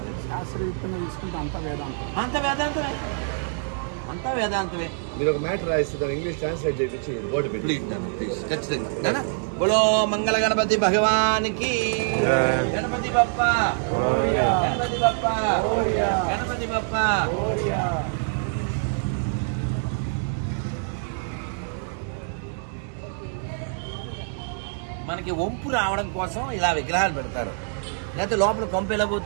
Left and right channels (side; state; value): left; silent; digital silence